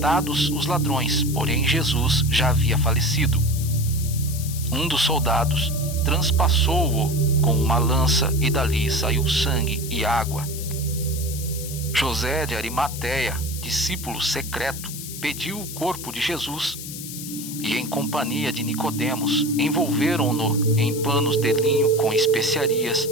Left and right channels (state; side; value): noise; left; hiss, 10 dB below the sound